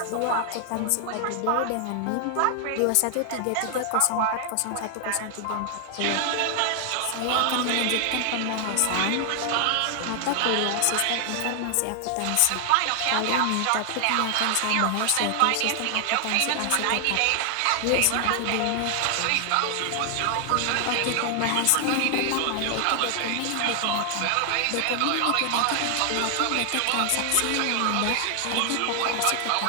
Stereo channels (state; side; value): different; both; correlation 0.00